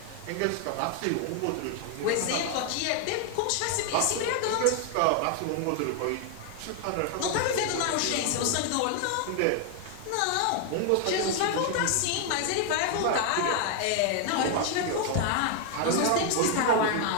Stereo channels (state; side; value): different; both; correlation 0.00